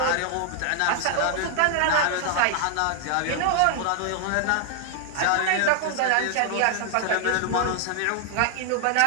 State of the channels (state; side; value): different; both; correlation 0.00